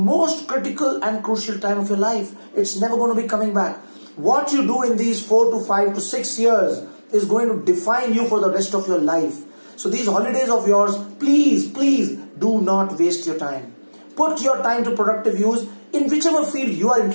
critical and crucial time of your life. It's never going to be coming back. What you do in these 4 to 5 to 6 years is going to define you for the rest of your life. So these holidays of yours, please do not waste your time. Put your time to productive use in whichever field you are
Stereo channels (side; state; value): both; inverted; correlation -1.00